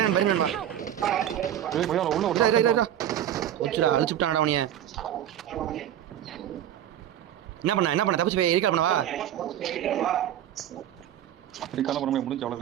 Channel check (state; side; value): quieter; left; 11.0 dB